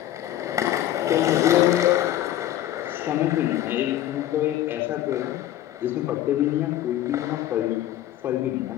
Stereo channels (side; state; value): right; quieter; 12.9 dB